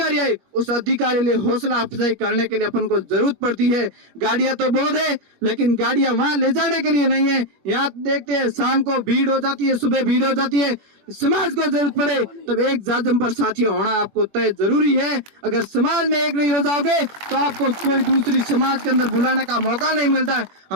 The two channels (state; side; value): late; left; 21 ms